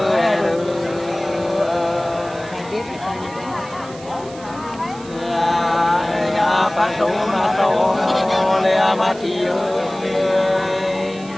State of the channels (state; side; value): noise; right; hiss, 20 dB below the sound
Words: nhà phát số ma tô lea ma chi